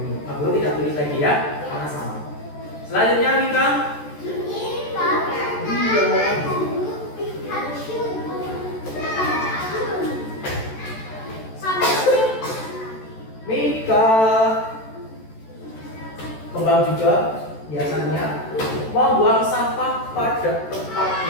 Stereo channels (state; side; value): late; right; 14 ms